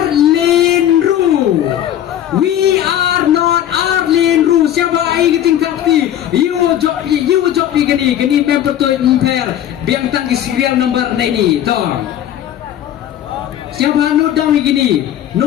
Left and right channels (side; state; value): right; quieter; 11.4 dB